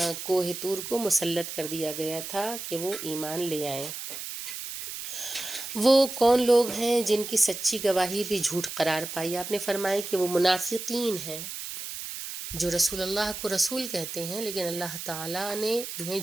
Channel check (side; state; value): right; noise; hiss, 8 dB below the sound